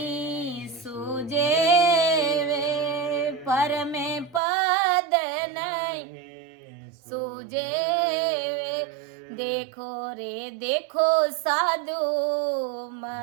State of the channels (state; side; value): drops out; left; at 4.4 s